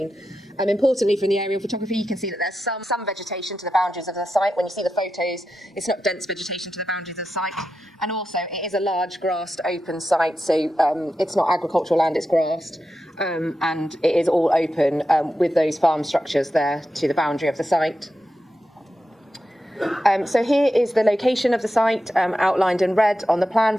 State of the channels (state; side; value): normal; both; correlation 0.89